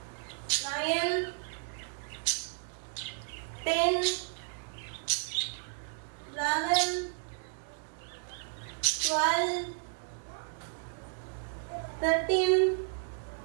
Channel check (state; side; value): silent; left; digital silence